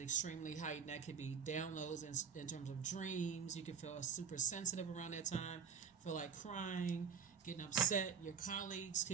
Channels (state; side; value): quieter; left; 6.6 dB